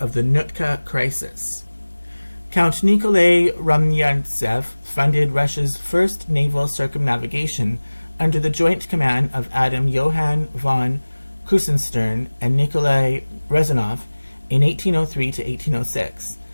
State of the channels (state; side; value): inverted; both; correlation -1.00